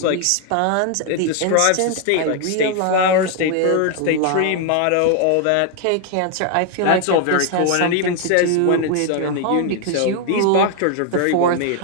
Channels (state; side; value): different; both; correlation 0.00